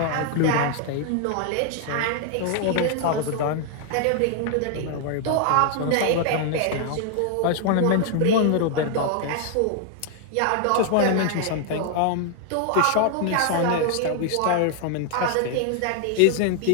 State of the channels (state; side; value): different; both; correlation 0.00